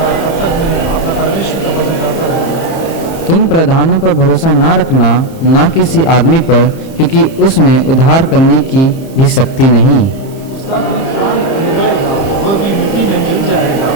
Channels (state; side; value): late; right; 30 ms